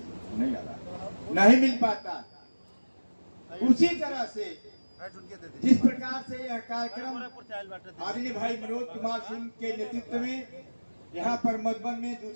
नहीं मिल पाता। उसी तरह से जिस प्रकार से यह कार्यक्रम आदरणीय भाई मनोज कुमार सिंह के नेतृत्व में यहाँ पर मधुबन में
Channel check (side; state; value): both; inverted; correlation -1.00